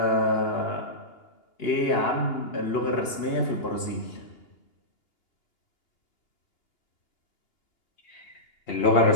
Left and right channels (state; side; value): late; right; 2.8 ms